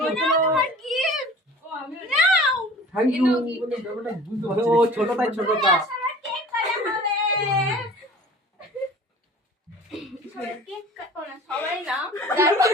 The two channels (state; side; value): normal; both; correlation 0.44